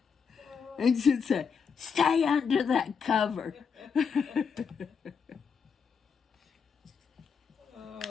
And she'd say, "Stay under that cover."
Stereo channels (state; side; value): quieter; right; 6.1 dB